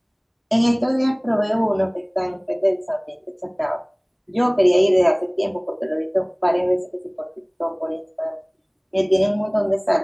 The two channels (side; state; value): both; identical; correlation 1.00